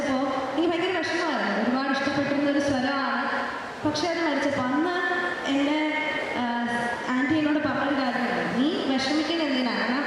എനിക്ക് ഭയങ്കര വിഷമമായിരുന്നു. ഒരുപാട് ഇഷ്ടപ്പെട്ടിരുന്നൊരു സ്വരമാണ്. പക്ഷേ അത് മരിച്ചപ്പോൾ അന്ന് എൻ്റെ ആൻറ്റി എന്നോട് പറഞ്ഞൊരു കാര്യമാണ്, നീ വിഷമിക്കുന്ന എന്തിനാണ്? കാരണം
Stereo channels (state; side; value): identical; both; correlation 1.00